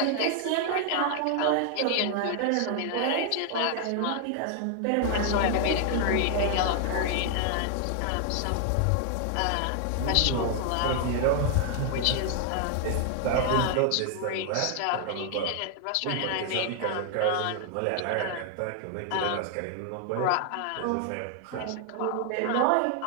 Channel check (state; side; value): different; both; correlation 0.00